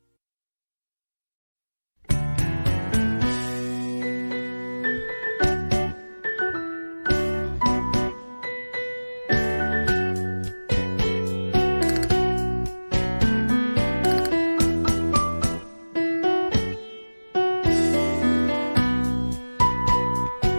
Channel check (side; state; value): both; inverted; correlation -1.00